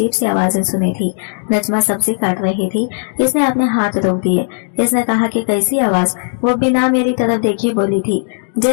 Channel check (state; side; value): silent; right; digital silence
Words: सी आवाजें सुनी थी। नजमा सब्जी काट रही थी। इसने अपने हाथ रोक दिए। इसने कहा कि कैसी आवाज? वो बिना मेरी तरफ देखे बोली थी,